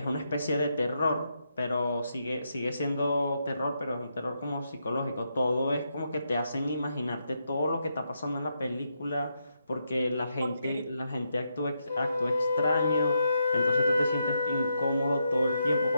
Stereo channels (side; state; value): both; inverted; correlation -0.81